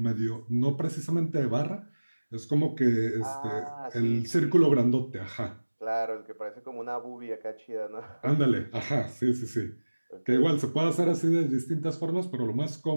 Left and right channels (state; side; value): inverted; both; correlation -1.00